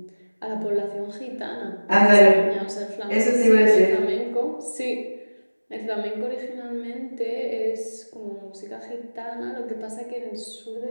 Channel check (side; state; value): both; inverted; correlation -1.00